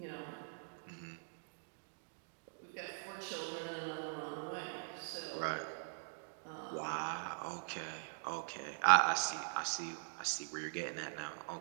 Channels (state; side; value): silent; left; digital silence